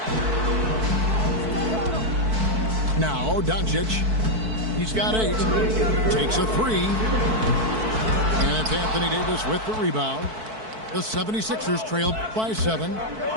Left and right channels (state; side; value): late; left; 4.6 ms